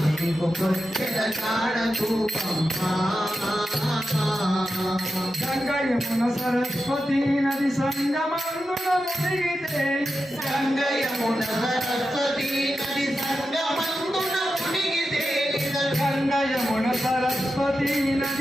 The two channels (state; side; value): normal; both; correlation 0.90